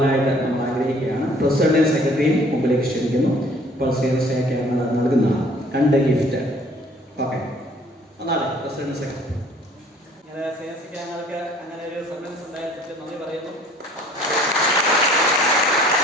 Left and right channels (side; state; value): both; normal; correlation 0.55